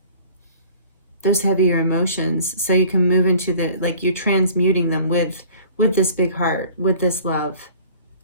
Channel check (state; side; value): inverted; both; correlation -0.49